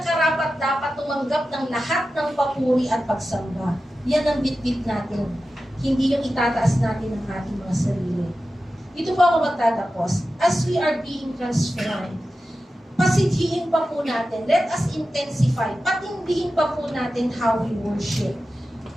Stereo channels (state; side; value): normal; both; correlation 0.93